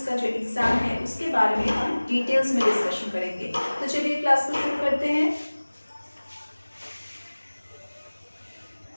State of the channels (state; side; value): inverted; both; correlation -1.00